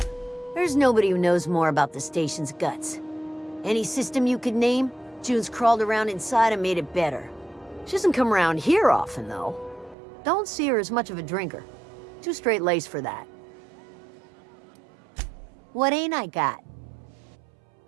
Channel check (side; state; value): left; drops out; at 10.0 s